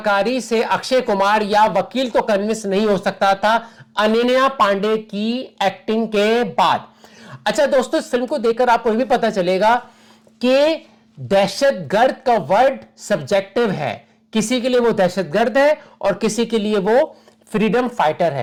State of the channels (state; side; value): identical; both; correlation 1.00